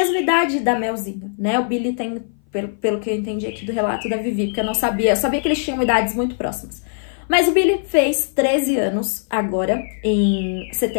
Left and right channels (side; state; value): right; silent; 58 dB below the other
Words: idade da Melzinha, né? O Billy tem, pelo que eu entendi aqui do relato da Vivi, porque eu sabia que eles tinham idades muito próximas. Mas o Billy fez 13 anos agora, em